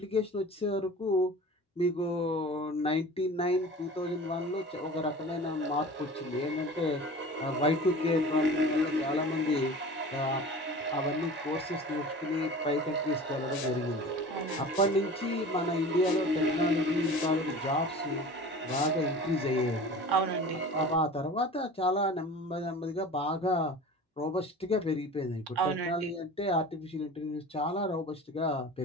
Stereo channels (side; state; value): both; normal; correlation 0.38